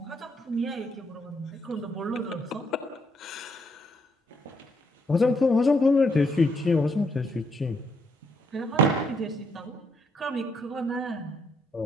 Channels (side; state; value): both; normal; correlation 0.73